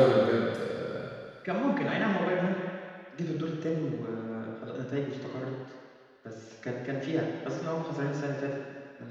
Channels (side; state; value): both; identical; correlation 1.00